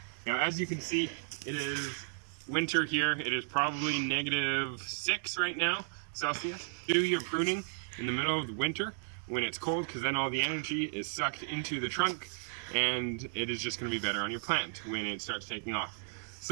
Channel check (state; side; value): silent; left; digital silence